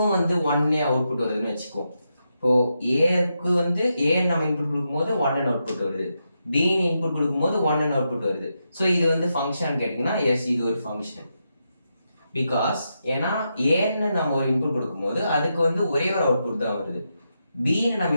வந்து 1 அவுட்புட் வருதுன்னு வச்சுக்கோ. இப்போது ஏக்கு வந்து ஏன்னு நம்ம இன்புட் கொடுக்கும்போது 1 அவுட்புட் வருது, பின்னு இன்புட் கொடுக்கும்போது 1 அவுட்புட் வருது. ஸோ இது வந்து ஃபங்க்ஷன் கேட்டிங்கன்னா எஸ், இது ஒரு ஃபங்க்ஷன். பிகாஸ் ஏன்னா ஏன்னு நம்ம ஒரு இன்புட் கொடுக்கும்போது அதுக்கு வந்து ஒரே ஒரு அவுட்புட் தான் வருது, பின்னு நம்ம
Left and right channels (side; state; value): both; inverted; correlation -0.85